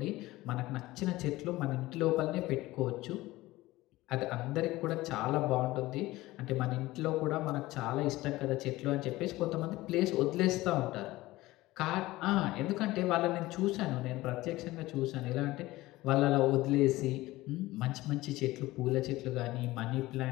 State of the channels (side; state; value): right; quieter; 18.4 dB